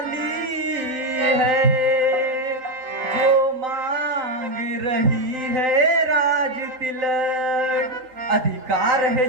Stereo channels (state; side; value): late; left; 3.6 ms